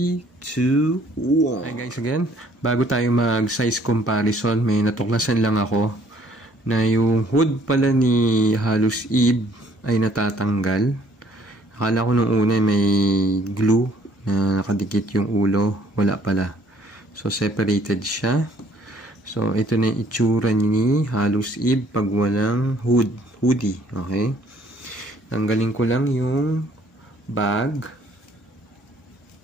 2, 1. Hi guys, again, bago tayo mag size comparison, may natuklasan lang ako na yung hood pala ni Hallows Eve ay natatanggal. Akala ko nung una may glue na nakadikit yung ulo, wala pala. So separated siya. So ito na yung itsura ni Hallows Eve pag walang hoodie. Okay, tanggalin ko lang yung bag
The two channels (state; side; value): normal; both; correlation 0.61